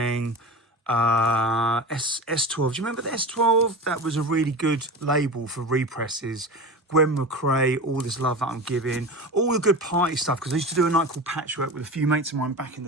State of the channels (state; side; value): normal; both; correlation 0.30